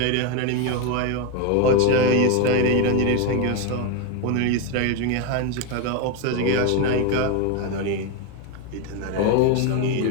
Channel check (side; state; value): both; different; correlation 0.02